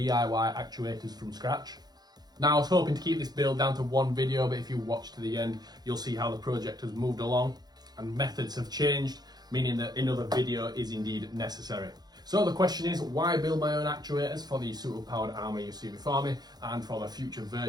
actuators from scratch. Now I was hoping to keep this build down to one video, but if you watch to the end you'll see how the project has moved along and methods have changed, meaning that another video is indeed necessary. So the question is, why build my own actuators for the suit of Power Armour you see before me and for the future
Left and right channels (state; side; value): late; left; 0.19 ms